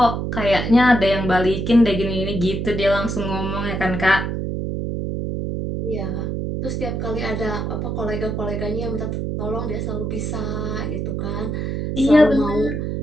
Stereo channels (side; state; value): right; noise; hum, 2 dB below the sound